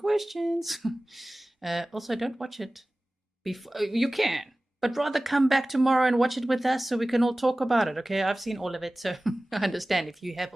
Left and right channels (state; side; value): normal; both; correlation 0.98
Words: Also, don't watch it before. You can, but rather come back tomorrow and watch it with us so we can all talk about it, okay? I've seen all of it, so I understand if you have